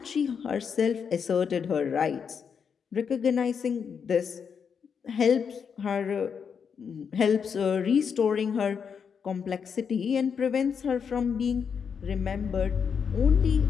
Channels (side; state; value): right; quieter; 6.7 dB